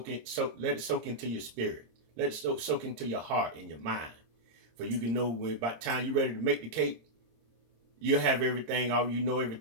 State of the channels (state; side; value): late; left; 26 ms